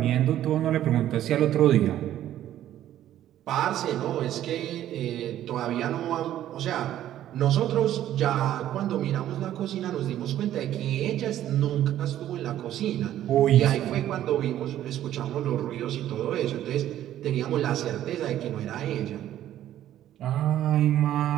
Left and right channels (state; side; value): quieter; left; 12.2 dB